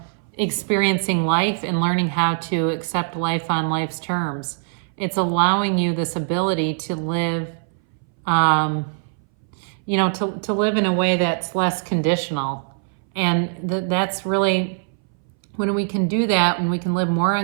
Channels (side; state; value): left; silent; 62 dB below the other